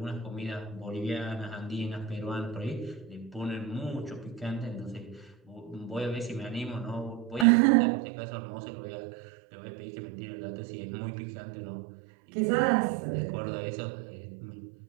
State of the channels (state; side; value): drops out; left; at 7.5 s